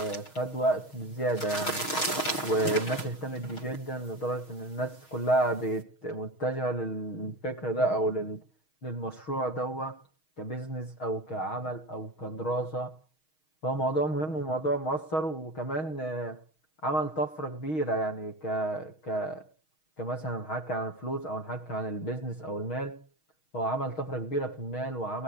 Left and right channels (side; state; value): right; late; 6.4 ms